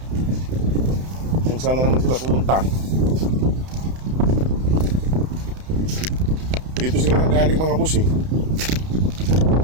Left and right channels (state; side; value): late; left; 31 ms